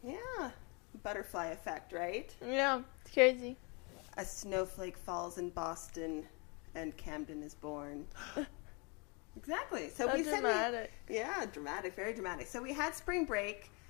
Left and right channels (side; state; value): right; quieter; 31.7 dB